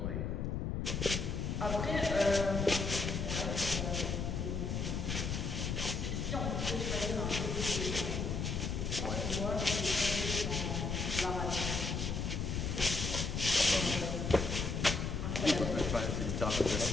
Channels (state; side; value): noise; left; rumble, 1 dB below the sound